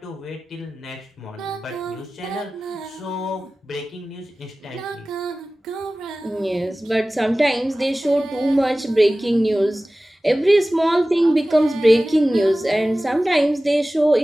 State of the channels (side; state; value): both; normal; correlation 0.97